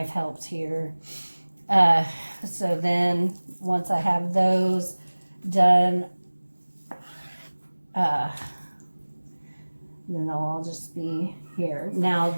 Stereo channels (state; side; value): inverted; both; correlation -1.00